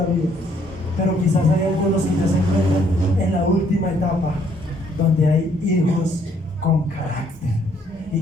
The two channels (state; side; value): normal; both; correlation 0.66